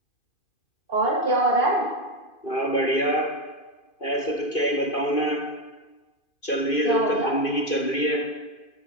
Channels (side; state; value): right; late; 2.5 ms